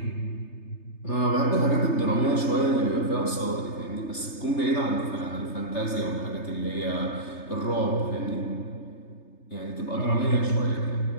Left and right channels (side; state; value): right; late; 3.3 ms